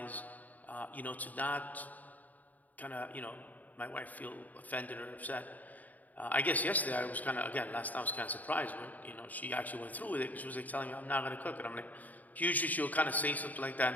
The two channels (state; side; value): late; right; 0.078 ms